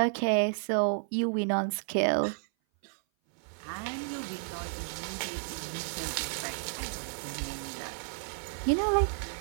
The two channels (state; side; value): silent; left; 57 dB below the other